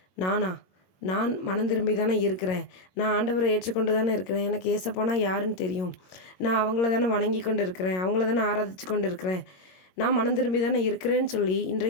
நான் மனம் திரும்பி தானே இருக்கிறேன், நான் ஆண்டவரை ஏற்றுக்கொண்டு தானே இருக்கிறேன், எனக்கு ஏசப்பானா யாருன்னு தெரியும், நான் அவங்கள தானே வணங்கி கொண்டு இருக்கிறேன், அவங்கள தானே ஆராதிச்சு கொண்டு இருக்கிறேன், நான் மனம் திரும்பி தானே இருக்கிறேன்னு சொல்லி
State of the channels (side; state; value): right; late; 22 ms